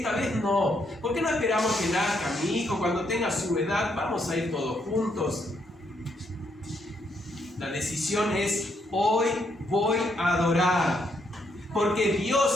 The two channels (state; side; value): normal; both; correlation 0.75